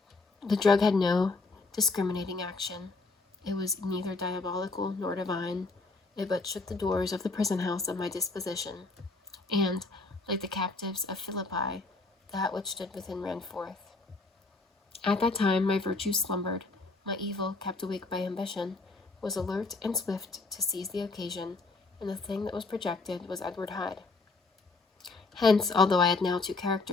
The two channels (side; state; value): right; quieter; 3.6 dB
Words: The drug had no discriminating action. It was neither diabolical nor divine. It but shook the doors of the prison house of my disposition, and, like the captives of Philippi, that which stood within ran forth. At that time my virtue slumbered, my evil, kept awake by ambition, was alert and swift to seize the occasion, and the thing that was projected was Edward Hyde. Hence, although I had now two